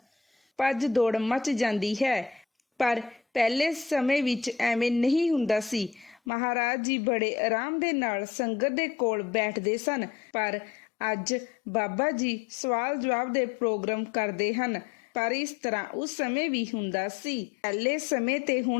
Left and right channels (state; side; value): drops out; right; at 6.2 s